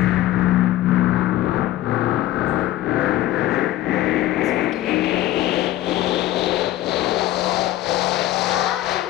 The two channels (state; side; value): quieter; right; 14.8 dB